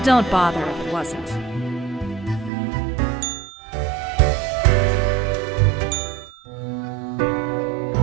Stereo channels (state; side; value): drops out; left; at 2.5 s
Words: Don't bother if it wasn't.